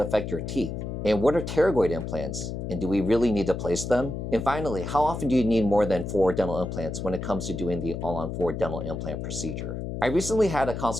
affect your teeth? And what are pterygoid implants? And do we really need to place them? And finally, how often do you need more than 4 dental implants when it comes to doing the all-on-4 dental implant procedure? I recently had a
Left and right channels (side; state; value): left; noise; hum, 5 dB below the sound